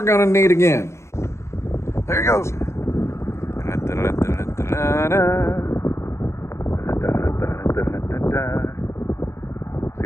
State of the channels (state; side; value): late; right; 0.13 ms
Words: gonna need again. There he goes. See